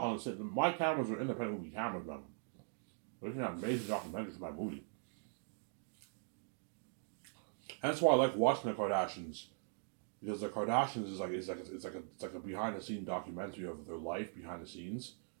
on the set. My cameras are independent movie cameras, man. They're an amazing documentary for my movie. That's why I like watching the Kardashians, because the Kardashians is like a behind the scenes documentary of their life behind the scenes.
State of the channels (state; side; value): silent; left; 50 dB below the other